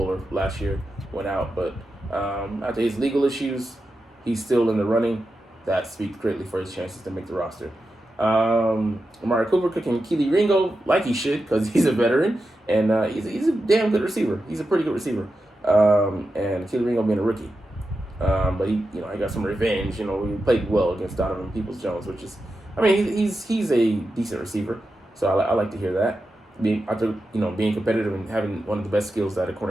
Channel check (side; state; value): both; normal; correlation 0.90